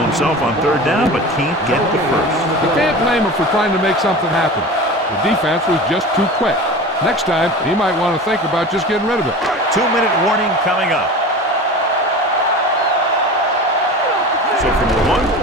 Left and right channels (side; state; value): both; normal; correlation 0.34